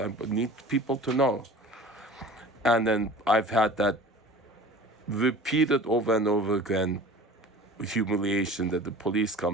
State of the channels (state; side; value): normal; both; correlation 0.41